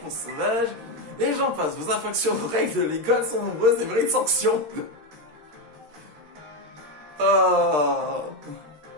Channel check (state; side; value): late; left; 13 ms